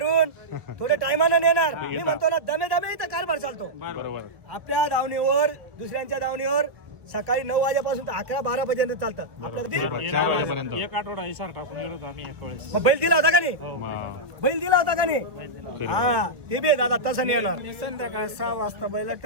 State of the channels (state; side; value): late; left; 1.1 ms